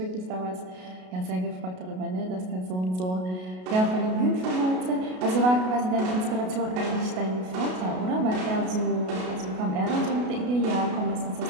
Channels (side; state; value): left; late; 33 ms